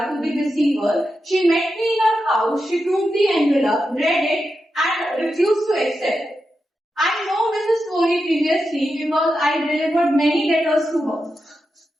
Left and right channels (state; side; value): normal; both; correlation 0.88